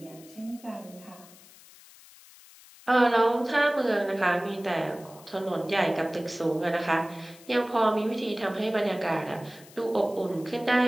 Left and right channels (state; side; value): noise; left; hiss, 22 dB below the sound